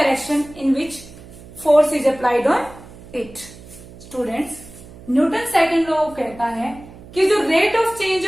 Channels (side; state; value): right; noise; hum, 19 dB below the sound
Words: in which force is applied on it. Students, Newton second law कहता है कि जो rate of change